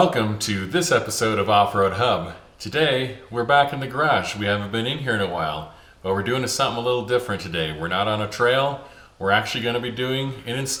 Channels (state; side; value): identical; both; correlation 1.00